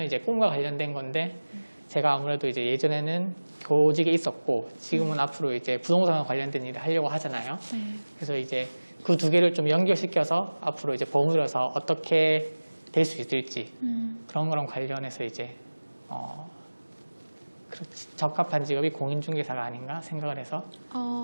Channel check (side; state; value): both; inverted; correlation -1.00